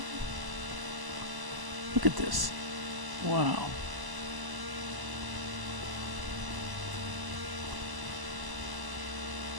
Look at this. Wow.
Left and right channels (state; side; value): late; left; 1.0 ms